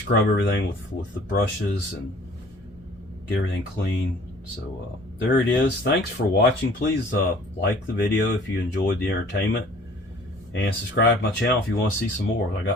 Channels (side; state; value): both; normal; correlation 0.52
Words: everything with the brushes and get everything clean. So there it is. Thanks for watching. Please like the video if you enjoyed the entertainment, and subscribe to my channel if you want to see some more. I